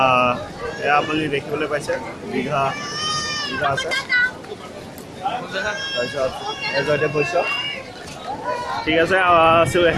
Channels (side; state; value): both; identical; correlation 1.00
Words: এয়া আপুনি দেখিবলৈ পাইছে দীঘা আছে তাৰপিছত এজতে পইচা ঠিক আছে